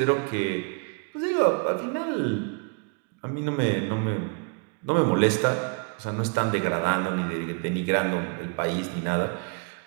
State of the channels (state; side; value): quieter; left; 35.5 dB